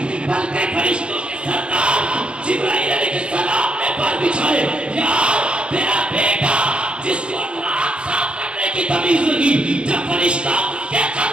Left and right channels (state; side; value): late; left; 0.057 ms